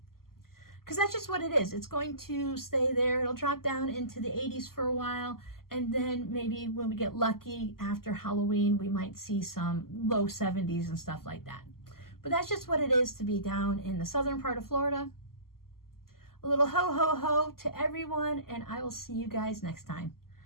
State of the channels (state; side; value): late; right; 0.92 ms